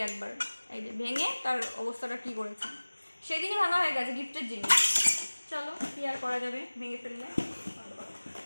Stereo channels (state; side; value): inverted; both; correlation -1.00